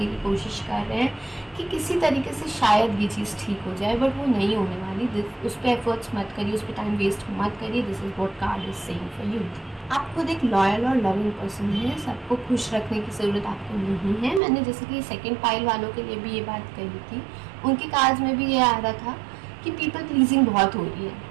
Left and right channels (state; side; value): drops out; left; at 14.4 s